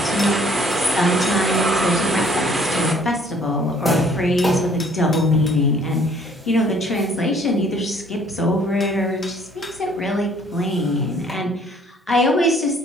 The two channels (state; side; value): normal; both; correlation 0.59